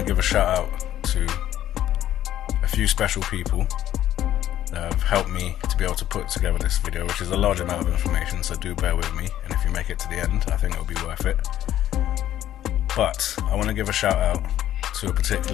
give a shout out to a few special people that have helped me to be able to put together this video, which is a large amount of information, so do bear with me, and if you make it to the end, I think it'll be worth it. But I want to give a shout out to a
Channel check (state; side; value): quieter; right; 12.2 dB